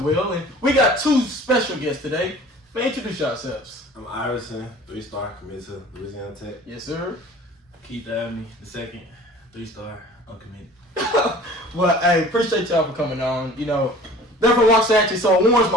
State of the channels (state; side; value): normal; both; correlation 0.45